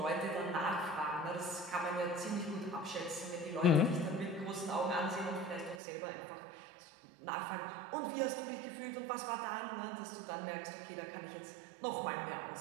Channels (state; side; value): drops out; left; at 5.8 s